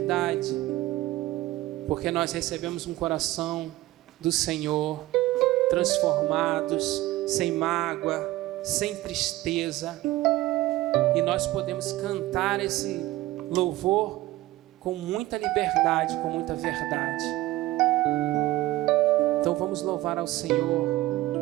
porque nós recebemos um coração do Senhor, transformados, sem mágoa, sem tristeza, e nós podemos cantar esse louvor com muita liberdade, com muita verdade. Então vamos louvar ao Senhor.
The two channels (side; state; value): left; quieter; 17.4 dB